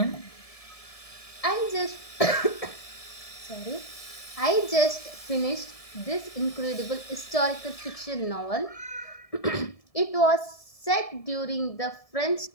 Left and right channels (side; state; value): right; late; 1.7 ms